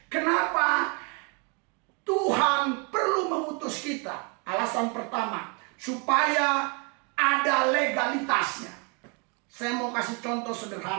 Kenapa? Tuhan perlu mengutus kita. Alasan pertama, supaya ada legalitasnya. Saya mau kasih contoh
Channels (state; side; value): quieter; left; 33.8 dB